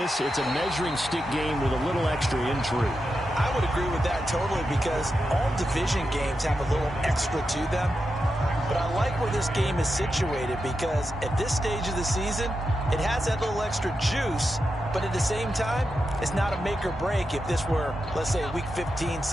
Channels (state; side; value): normal; both; correlation 0.88